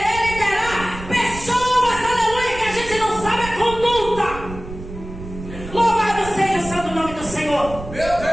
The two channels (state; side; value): noise; right; rumble, 12 dB below the sound